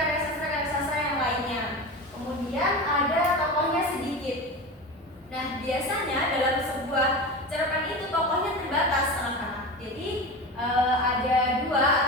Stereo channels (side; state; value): both; normal; correlation 0.27